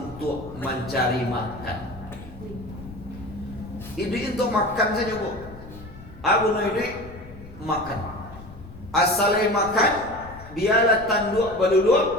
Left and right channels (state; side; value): noise; left; rumble, 16 dB below the sound